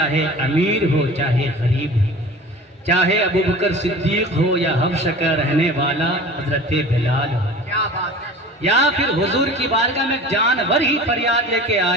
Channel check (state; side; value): normal; both; correlation 0.40